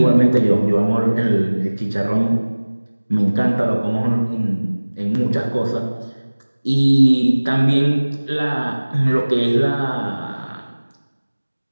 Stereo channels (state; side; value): inverted; both; correlation -1.00